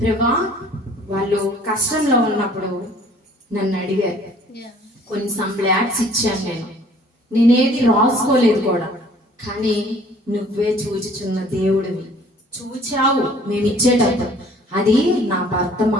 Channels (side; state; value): both; normal; correlation 0.55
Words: ప్రభా వాళ్ళు కష్టంలో ఉన్నప్పుడు నన్ను అడిగారు, కొన్ని సంప్లాట్స్ ఇచ్చాను, నేనేది రాసుకోలేదు కూడా, కానీ నువ్వే చూచుచున్న దేవుడివి, చూచావు మేము ఇచ్చేటప్పుడు. అది నా